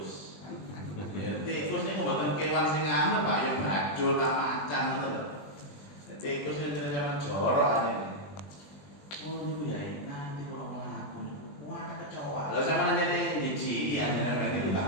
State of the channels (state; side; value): late; right; 20 ms